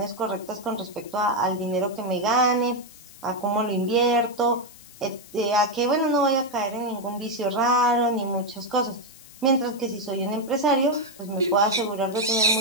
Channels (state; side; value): noise; left; hiss, 21 dB below the sound